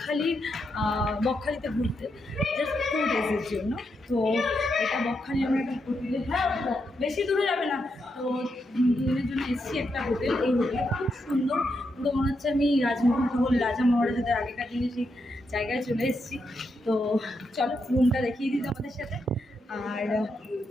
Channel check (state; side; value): normal; both; correlation 0.83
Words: বকখালিতে ঘুরতে জাস্ট 2 ডেজের জন্য। তো এটা বকখালি আমরা একটা হোটেলে, হ্যাঁ বেশি দূরে যাবে না। তো 2 দিনের জন্য এসেছি একটা হোটেল। এই হোটেলটা খুব সুন্দর, পুরো মনে হচ্ছে আমি রাজা মহারাজাদের আগেকার দিনে সেই জায়গায় চলে এসেছি। তো চলো রুমটা দেখিয়ে দিই আমাদের সাথে। আর